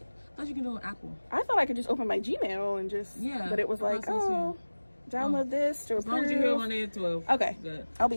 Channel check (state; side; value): inverted; both; correlation -1.00